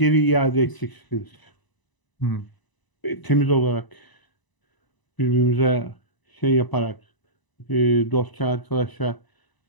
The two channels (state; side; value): late; right; 1.0 ms